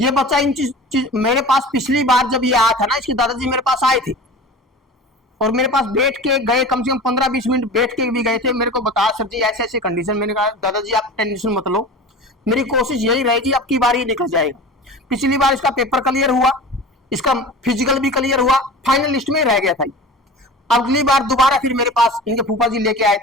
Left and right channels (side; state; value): both; normal; correlation 0.35